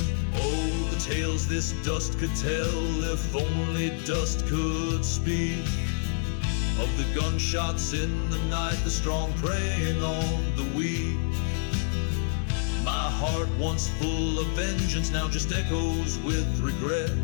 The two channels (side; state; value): right; silent; 60 dB below the other